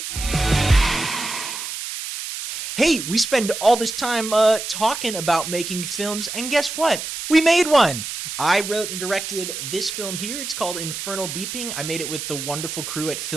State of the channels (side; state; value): right; noise; hiss, 6 dB below the sound